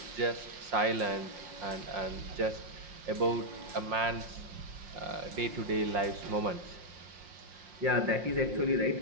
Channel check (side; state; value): left; late; 5.6 ms